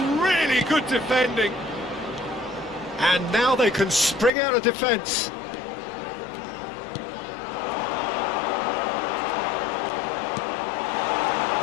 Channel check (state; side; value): drops out; right; at 4.3 s